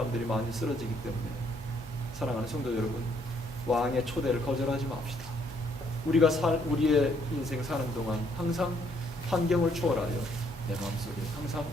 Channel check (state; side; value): normal; both; correlation 0.68